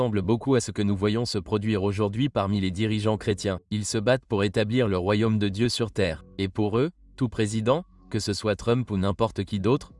beaucoup à ce que nous voyons se produire aujourd'hui parmi les dirigeants chrétiens. Ils se battent pour établir le royaume de Dieu sur terre. Et pour eux, tout président, que ce soit Trump ou n'importe qui d'autre,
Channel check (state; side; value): identical; both; correlation 1.00